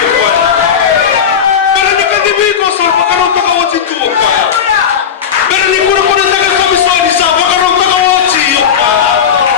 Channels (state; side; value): quieter; right; 7.7 dB